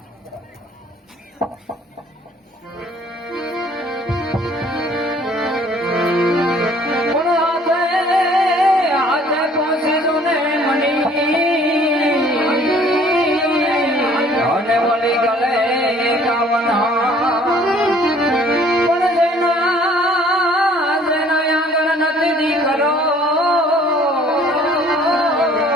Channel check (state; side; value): normal; both; correlation 0.56